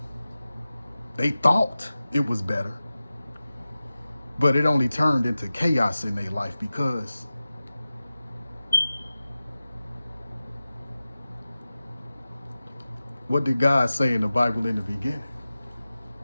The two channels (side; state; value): both; inverted; correlation -0.96